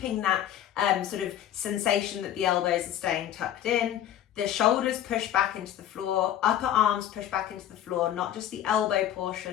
that sort of sensation that the elbows are staying tucked in. The shoulders push back into the floor, upper arms push back into the floor, not just the elbow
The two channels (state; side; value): quieter; right; 11.2 dB